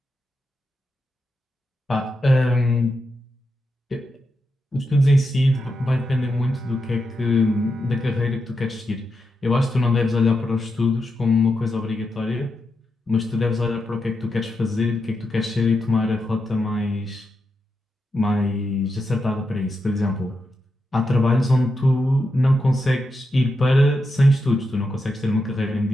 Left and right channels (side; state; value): both; normal; correlation 0.86